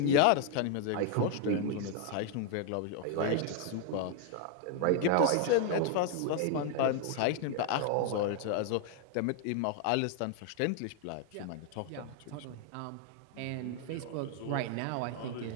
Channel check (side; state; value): both; different; correlation 0.00